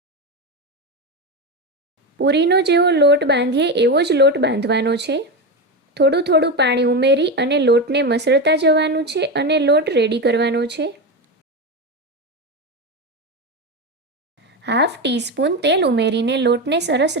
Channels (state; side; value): normal; both; correlation 0.16